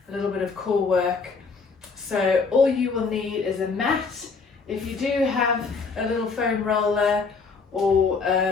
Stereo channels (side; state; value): right; quieter; 4.8 dB